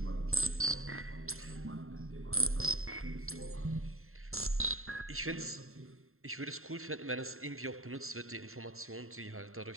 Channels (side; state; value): left; late; 0.62 ms